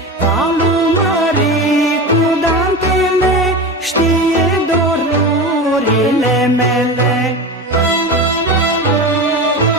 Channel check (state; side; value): normal; both; correlation 0.26